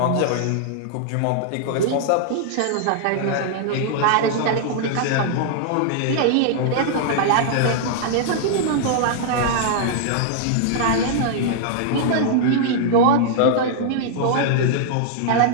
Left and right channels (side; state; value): both; different; correlation -0.01